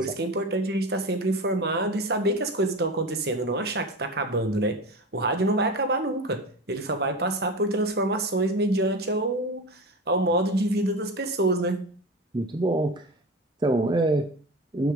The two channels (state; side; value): normal; both; correlation 0.27